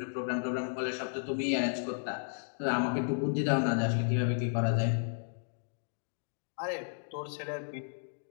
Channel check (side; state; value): right; silent; digital silence